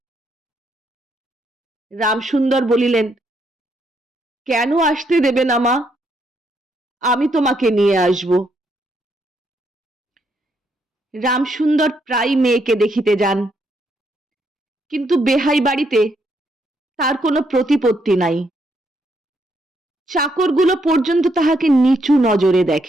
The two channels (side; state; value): both; normal; correlation 0.75